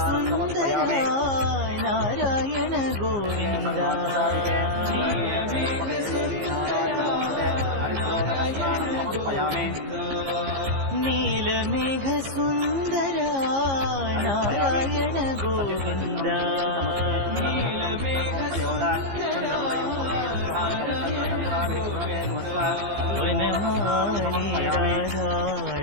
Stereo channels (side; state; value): left; late; 15 ms